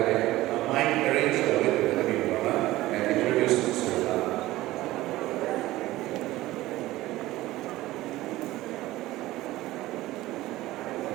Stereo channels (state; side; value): quieter; left; 17.0 dB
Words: main arrange gue tadi mana, and introduce